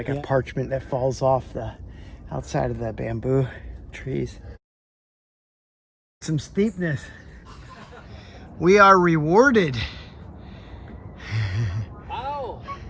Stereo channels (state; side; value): identical; both; correlation 1.00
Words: a parchment that falls off the outside of the bamboo trees. Some steepness. We are rewarded